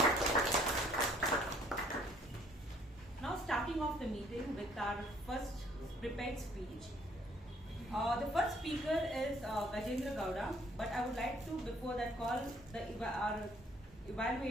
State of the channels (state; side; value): normal; both; correlation 0.61